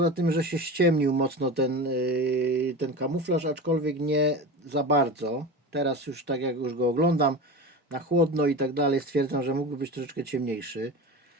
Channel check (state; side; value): normal; both; correlation 0.28